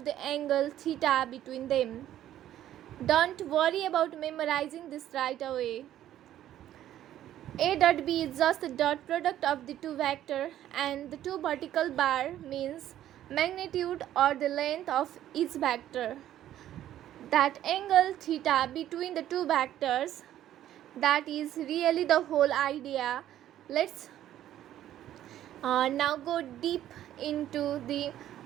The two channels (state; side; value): quieter; left; 12.2 dB